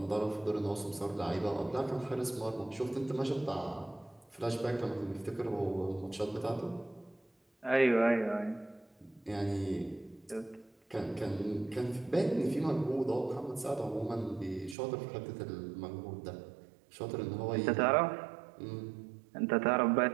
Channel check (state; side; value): drops out; left; at 14.8 s